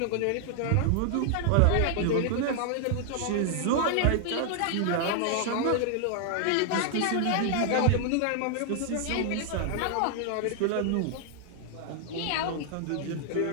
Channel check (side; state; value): both; different; correlation 0.00